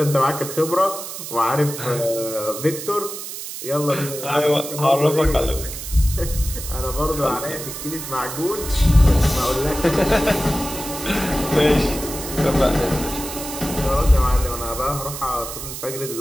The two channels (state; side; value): noise; right; hiss, 9 dB below the sound